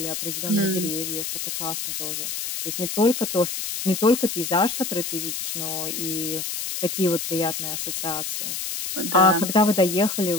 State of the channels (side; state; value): left; noise; hiss, 4 dB below the sound